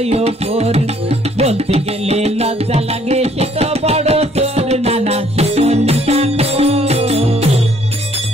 ওপর, বলতে গেলে লজ্জা লাগে সে তো বড় তোর। নানা সে তো নিশা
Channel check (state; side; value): normal; both; correlation 0.63